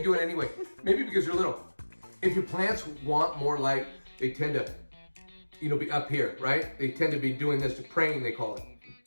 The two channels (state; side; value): inverted; both; correlation -1.00